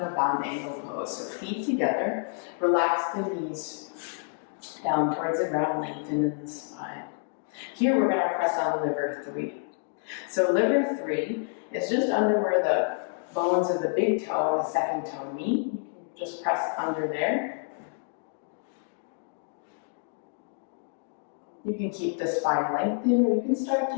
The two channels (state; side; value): silent; right; 59 dB below the other